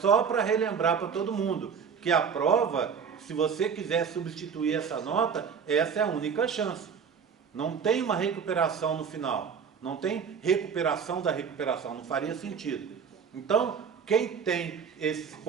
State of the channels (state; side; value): quieter; left; 6.6 dB